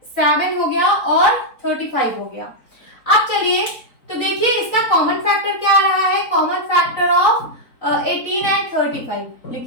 7 हो गया और 35 हो गया। अब चलिए तो देखिए इसका कॉमन फैक्टर क्या आ रहा है, कॉमन फैक्टर ऑफ 18 एंड 35।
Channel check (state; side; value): late; right; 4.1 ms